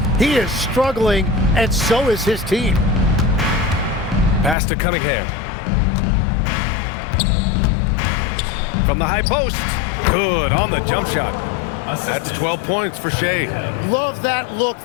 He is struggling, and so is his team. Pass to Cunningham. From the high post. Good on the jump shot. That's 12 points for Shea. Love that look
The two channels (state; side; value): drops out; right; at 4.5 s